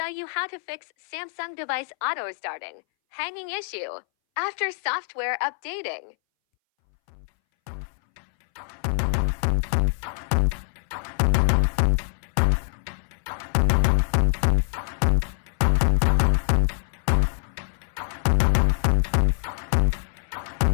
you how to fix Samsung device auto-starting hanging issue after software updating.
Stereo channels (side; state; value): right; silent; 61 dB below the other